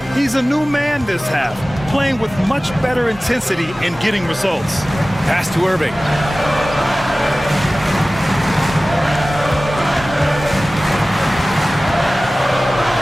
He's a new man this half, playing with much better intensity and getting results. Pass to Irving.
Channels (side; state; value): both; normal; correlation 0.97